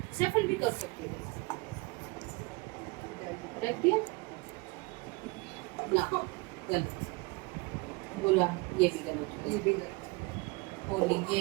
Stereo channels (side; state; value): left; quieter; 26.0 dB